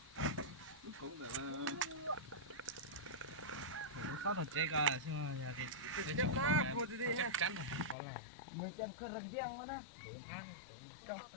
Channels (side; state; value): right; drops out; at 8.0 s